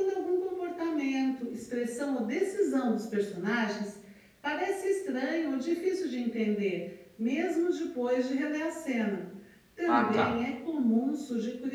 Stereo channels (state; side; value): identical; both; correlation 1.00